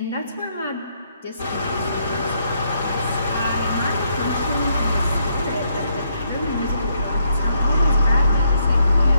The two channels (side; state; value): both; inverted; correlation -0.75